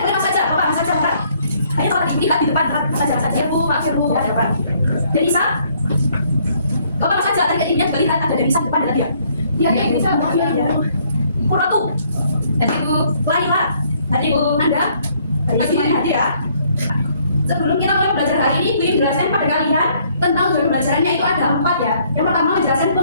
saja, Mas saja, Pak. Ayo Farah, lihat di depan, Mas saja. Ya Bu, Pak Bu, ya Pak. Denisa, kau Mas saja, tadi ini lihat ada Denisa di depan tadi ya. Iya, Denisa, ya. Kuratu, tadi Bu, Laila, tadi Bu, Anda, tadi hadir ya. Sebelum kita mulai belajar hari ini, Ibu menjelaskan pada kalian tentang tujuan pembelajarannya itu ada 4 ya. Yang pertama menjelaskan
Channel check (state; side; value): inverted; both; correlation -0.65